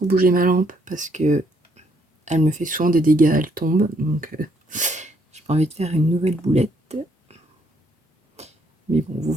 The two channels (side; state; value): both; normal; correlation 0.70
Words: bouger ma lampe parce que elle me fait souvent des dégâts, elle tombe. Donc j'ai pas envie de faire une nouvelle boulette. Mais bon, vous